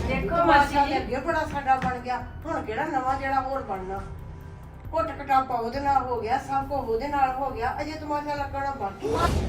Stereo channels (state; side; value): identical; both; correlation 1.00